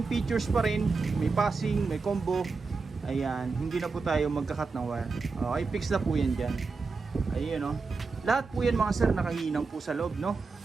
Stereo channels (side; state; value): left; quieter; 4.4 dB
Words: features pa rin, may passing, may combo. Ayan, hindi na po tayo magkakat ng wire. Okay, fix na po yan dyan. Ayun, no? Lahat po yan mga sir nakahinang po sa loob, no?